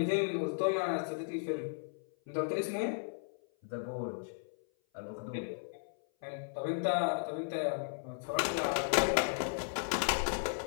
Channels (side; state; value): right; silent; 54 dB below the other